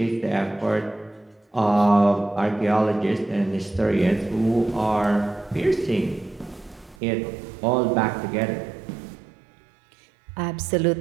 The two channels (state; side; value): drops out; left; at 7.0 s